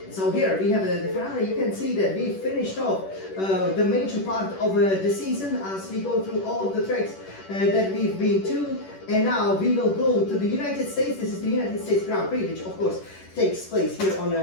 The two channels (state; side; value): late; right; 10 ms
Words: So here we have the Ferrari. You can see that we finished off the major part of the season as we go through all of the tracks that we've been to. And now we will go to the United States. This is the United States Grand Prix, which of course takes place here on